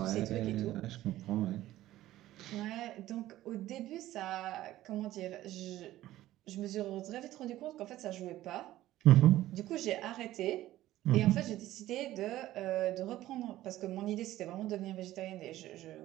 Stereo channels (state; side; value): quieter; left; 14.9 dB